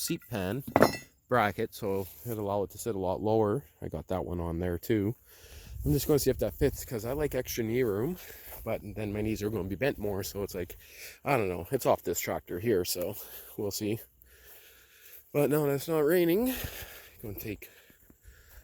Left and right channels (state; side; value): identical; both; correlation 1.00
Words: pan bracket, so it'll allow it to sit a lot lower. I got that one on there too. I'm just going to see if that fits because I like extra knee room, but then my knees are going to be bent more, so it's like, I don't know, it's off this tractor here, so we'll see. But now that it's not raining, I'm going to take